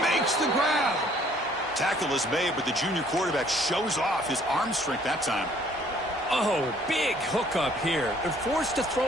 makes the grab. Tackle is made, but the junior quarterback shows off his arm strength that time. Oh, big hookup here. They're forced to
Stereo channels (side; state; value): both; normal; correlation 0.60